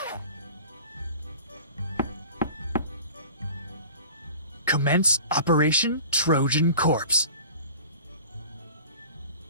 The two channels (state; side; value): inverted; both; correlation -0.41